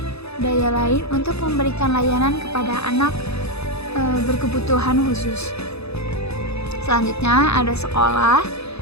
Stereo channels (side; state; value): right; late; 0.79 ms